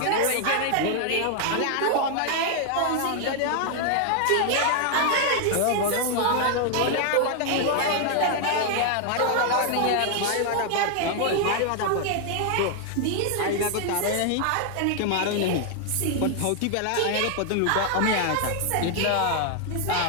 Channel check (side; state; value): both; different; correlation 0.00